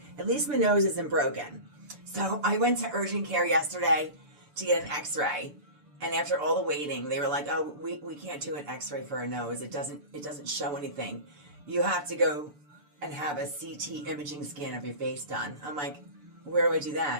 broken. So I went to urgent care yesterday to get an x-ray, and after all the waiting, they were like, oh, we can't do an x-ray for a nose. It doesn't show anything. You have to go and have a CT imaging scan of your face done. I'm like, where do I do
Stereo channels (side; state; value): left; late; 6.8 ms